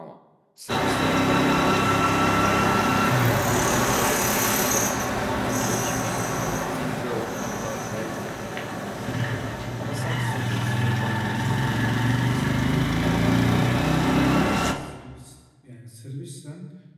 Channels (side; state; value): both; identical; correlation 1.00